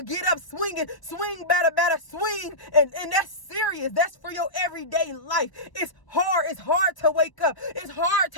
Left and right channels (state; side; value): late; right; 1.0 ms